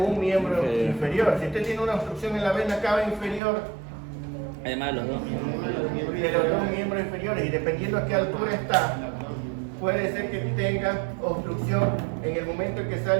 miembro inferior. Si usted tiene una obstrucción en la vena cava inferior, Además de los dos miembros. de los dos miembros inferiores, y dependiendo a qué altura está, puede ser que tenga obstrucción en el momento en que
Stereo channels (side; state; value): left; drops out; at 3.4 s